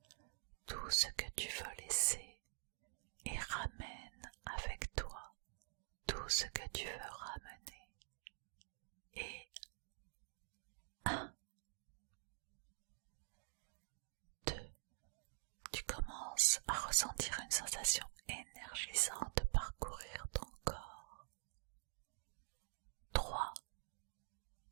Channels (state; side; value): silent; left; digital silence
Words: tout ce que tu veux laisser et ramène avec toi tout ce que tu veux ramener. Et 1, 2, tu commences à ressentir une sensation énergisante parcourir ton corps. 3,